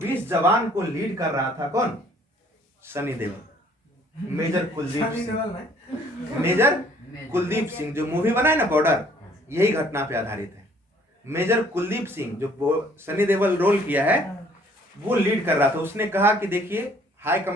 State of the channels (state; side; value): normal; both; correlation 0.60